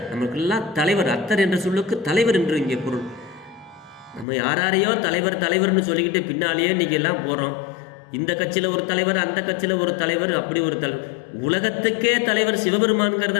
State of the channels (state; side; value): drops out; right; at 4.2 s